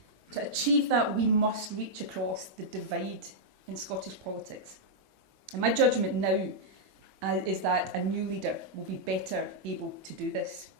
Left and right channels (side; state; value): left; late; 21 ms